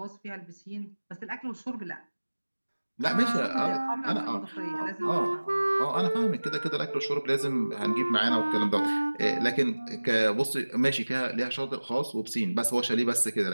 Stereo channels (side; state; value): both; inverted; correlation -1.00